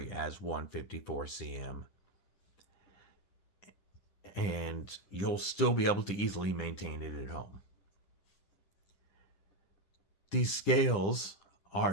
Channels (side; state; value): right; late; 10 ms